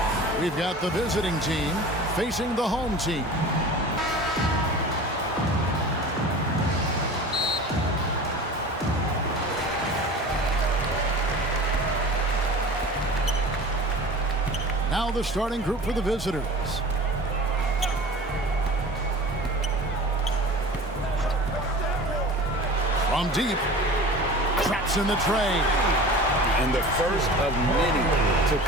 We've got the visiting team facing the home team. Now the starting group for the visitors. From deep, traps in the tray. And the first of many to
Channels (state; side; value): normal; both; correlation 0.38